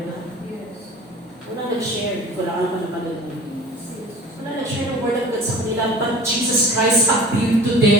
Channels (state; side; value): normal; both; correlation 0.42